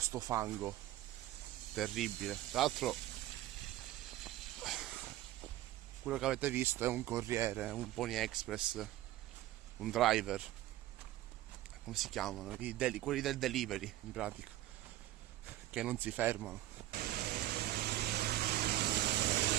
fango terribile. Tra l'altro quello che avete visto è un corriere, un Pony Express, un driver, come si chiamano? Quelli del delivery, in pratica, che non si fermano.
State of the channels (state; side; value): quieter; left; 15.0 dB